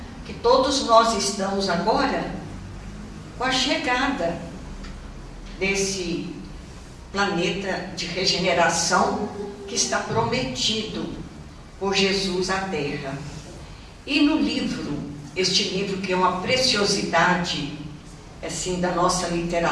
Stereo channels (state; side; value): identical; both; correlation 1.00